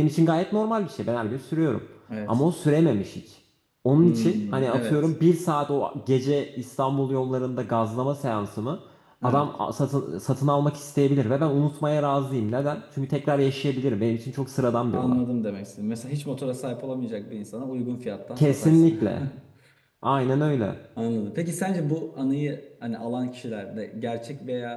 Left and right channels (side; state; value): both; identical; correlation 1.00